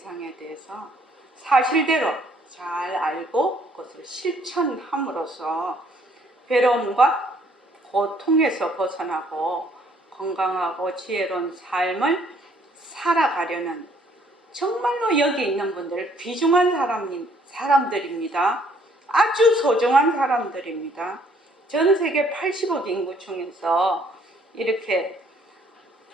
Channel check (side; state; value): both; normal; correlation 0.63